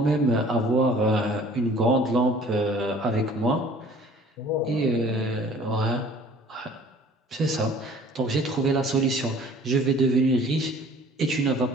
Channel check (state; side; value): normal; both; correlation 0.51